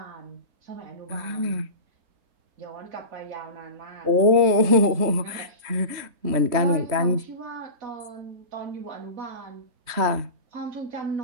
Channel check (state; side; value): late; left; 3.2 ms